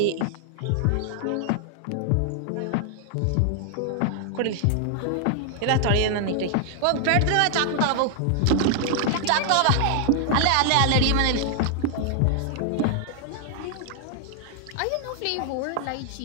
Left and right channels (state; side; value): different; both; correlation 0.00